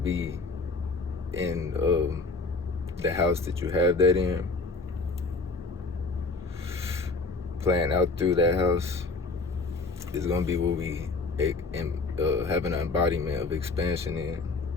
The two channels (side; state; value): right; quieter; 3.7 dB